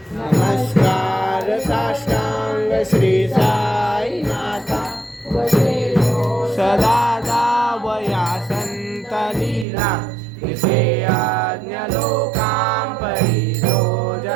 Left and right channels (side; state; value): left; drops out; at 9.7 s